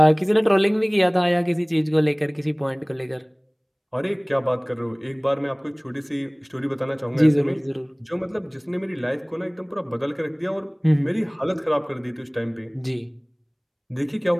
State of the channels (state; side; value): identical; both; correlation 1.00